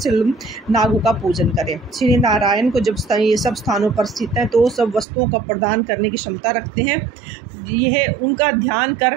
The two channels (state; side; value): drops out; left; at 5.1 s